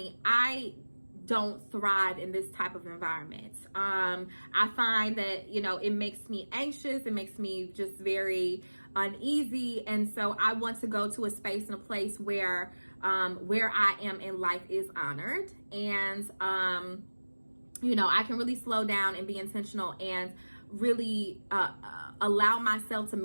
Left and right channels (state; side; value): inverted; both; correlation -1.00